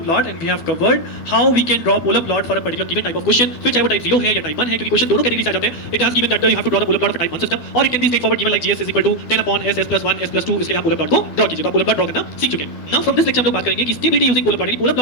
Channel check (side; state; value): right; late; 12 ms